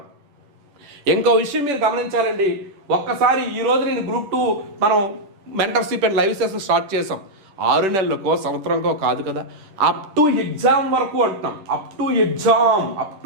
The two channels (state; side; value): late; left; 10 ms